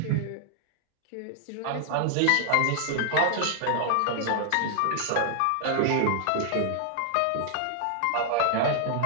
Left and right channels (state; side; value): different; both; correlation 0.00